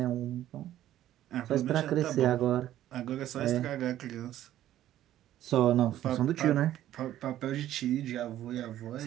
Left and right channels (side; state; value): left; quieter; 12.8 dB